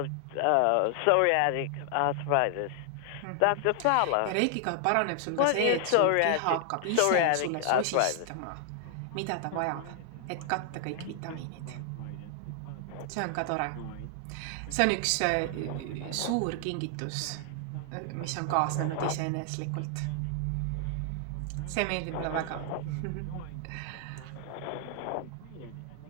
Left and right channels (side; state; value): both; different; correlation 0.00